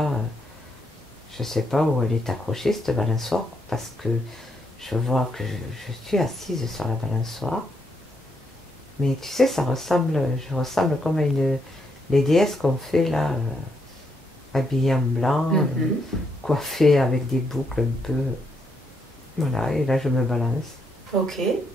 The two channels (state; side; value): normal; both; correlation 0.77